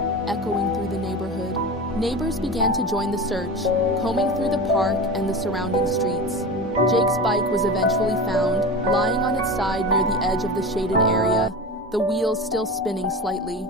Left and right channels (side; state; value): both; normal; correlation 0.29